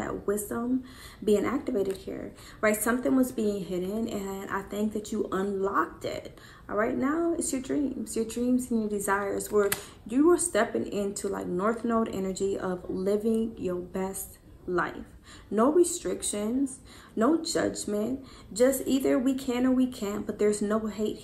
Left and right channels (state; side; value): identical; both; correlation 1.00